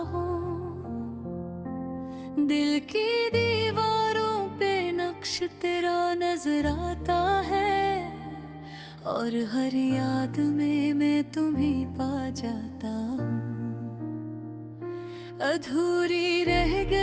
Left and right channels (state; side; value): identical; both; correlation 1.00